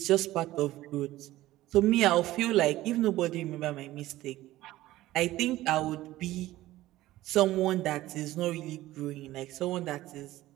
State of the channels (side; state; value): left; quieter; 16.1 dB